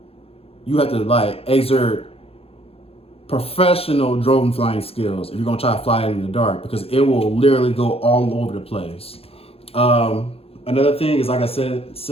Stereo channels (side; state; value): right; late; 0.28 ms